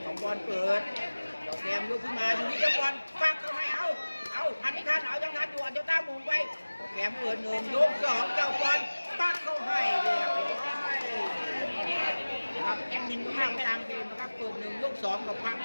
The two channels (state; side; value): inverted; both; correlation -1.00